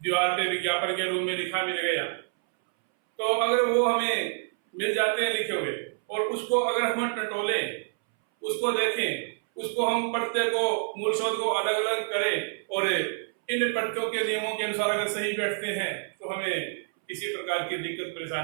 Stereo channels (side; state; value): left; silent; 60 dB below the other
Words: दीवार पे विज्ञापन के रूप में लिखा मिल गया, तो अगर वो हमें मिल जाते हैं लिखे हुए, और उसको अगर हम टटोले, उसको देखें, उसको हम प्रत्यय को, मूल शब्द को अलग अलग करें, और इन प्रत्ययों के नियमों के अनुसार अगर सही बैठते हैं, तो हमें किसी प्रकार की दिक्कत